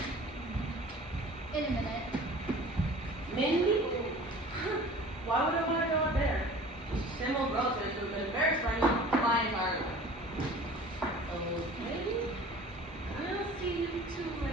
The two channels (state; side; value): normal; both; correlation 0.44